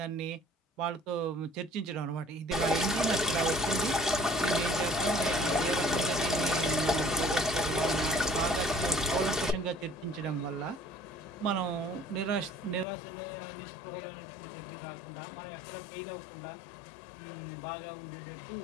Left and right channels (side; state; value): right; drops out; at 12.9 s